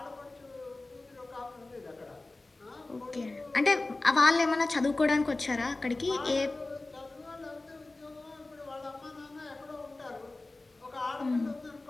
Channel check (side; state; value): right; quieter; 3.1 dB